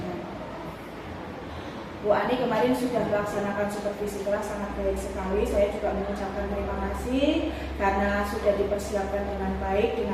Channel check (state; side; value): identical; both; correlation 1.00